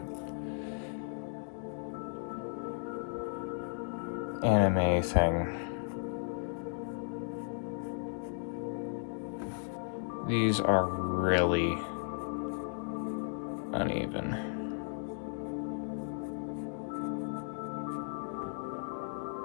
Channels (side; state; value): right; silent; 54 dB below the other